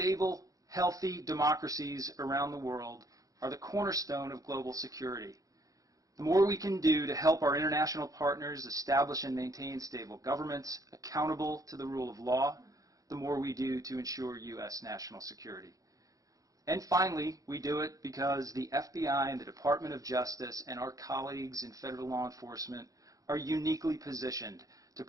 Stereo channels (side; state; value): left; late; 0.17 ms